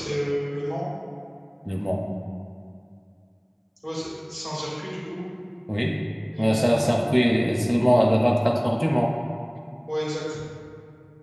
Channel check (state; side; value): identical; both; correlation 1.00